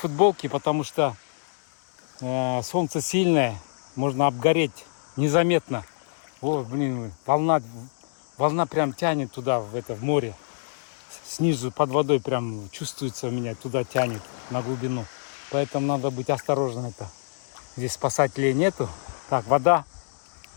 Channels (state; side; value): silent; right; digital silence